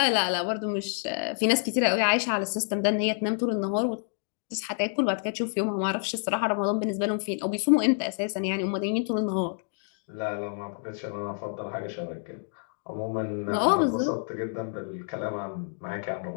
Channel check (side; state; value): right; silent; 59 dB below the other